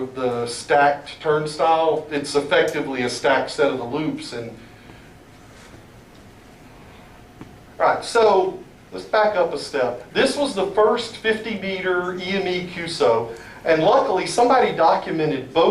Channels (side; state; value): both; identical; correlation 1.00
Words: the stacked turnstile. It's effectively a stacked set of the loops. And all right, so let's back up a step. This was the first 50-meter EME QSO, and luckily somebody documented